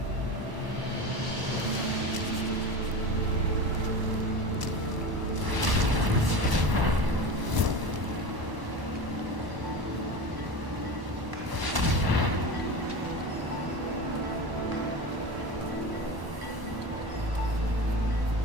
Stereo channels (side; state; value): left; late; 1.0 ms